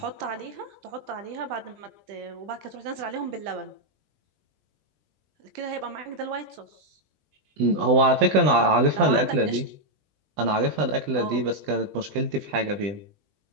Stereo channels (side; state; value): left; late; 20 ms